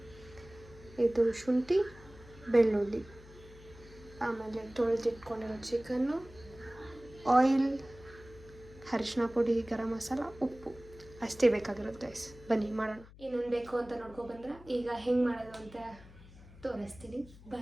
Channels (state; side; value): noise; left; hum, 20 dB below the sound